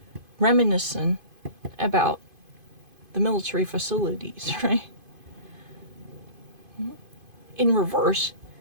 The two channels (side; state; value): left; late; 2.5 ms